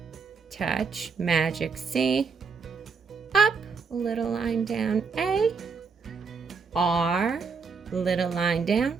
Touch, magic C. Up, little line down, A. R, little line down,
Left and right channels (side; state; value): left; quieter; 5.2 dB